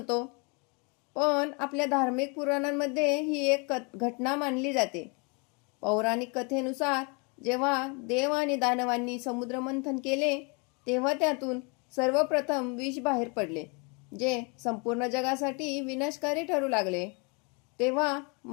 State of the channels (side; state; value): right; quieter; 32.6 dB